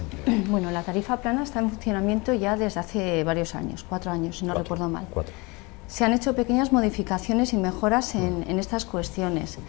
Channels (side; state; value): right; quieter; 26.6 dB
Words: Bueno, la tarifa plana está en funcionamiento ya desde hace varios años, 4 años, si no recuerdo mal. 4. Se han hecho pequeñas modificaciones y mejoras en estas cuestiones.